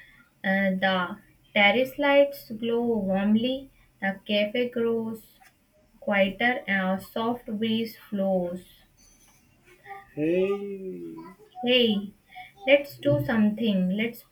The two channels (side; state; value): both; identical; correlation 1.00